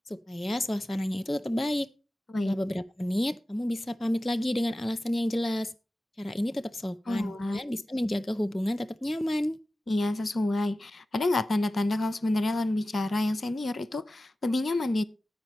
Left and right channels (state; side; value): normal; both; correlation 0.95